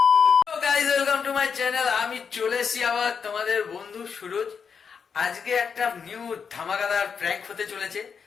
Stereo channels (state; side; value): quieter; right; 6.3 dB